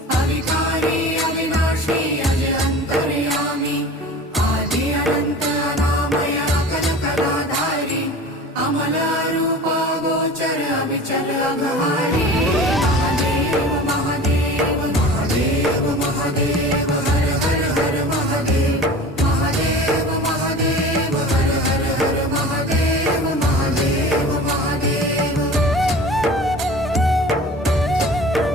अविकारी अविनाशी अज अंतर्यामी आदि अनंत अनामय अकल कलाधारी अमल रूप गोचर अविचल अघहारी महादेव महादेव महादेव महादेव हर हर हर महादेव महादेव महादेव हर हर हर महादेव महादेव महादेव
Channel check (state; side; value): normal; both; correlation 0.39